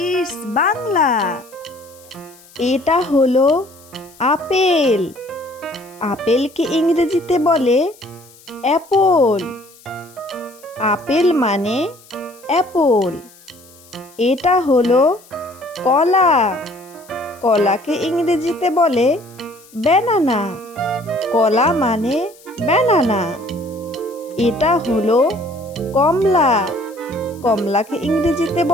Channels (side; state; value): left; noise; hiss, 25 dB below the sound